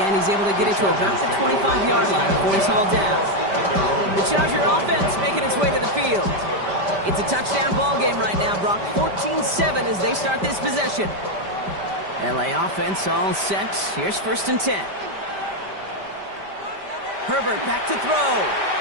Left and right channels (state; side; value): late; left; 5.1 ms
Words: end, he's able to get it to about the 25-yard line before he's hauled down. The Charger offense making its way to the field. It's a touchdown ball game right now, Brock. 14-7 as they start this possession. LA offense all set. Here's 1st and 10. Herbert back to throw.